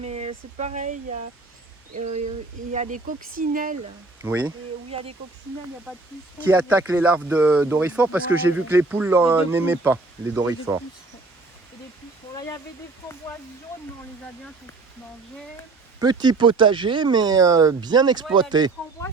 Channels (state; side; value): quieter; left; 3.6 dB